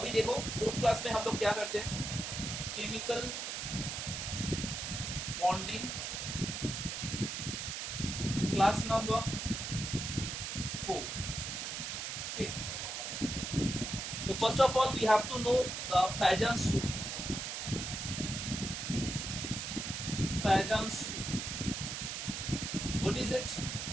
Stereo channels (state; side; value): noise; right; hiss, 4 dB below the sound